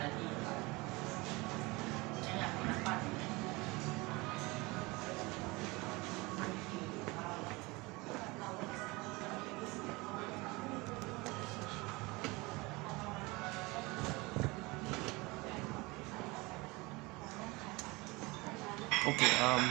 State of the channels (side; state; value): left; quieter; 23.9 dB